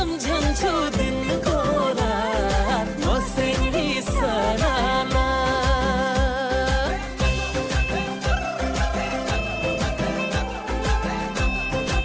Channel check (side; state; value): both; identical; correlation 1.00